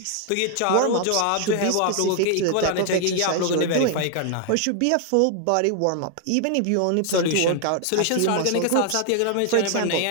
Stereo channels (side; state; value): both; different; correlation 0.00